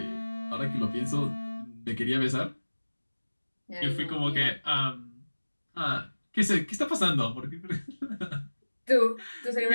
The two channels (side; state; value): both; inverted; correlation -1.00